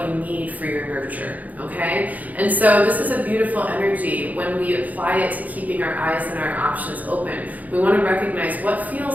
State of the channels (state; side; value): late; left; 0.078 ms